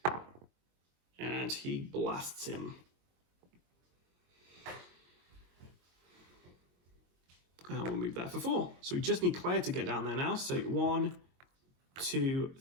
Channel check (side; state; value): left; late; 22 ms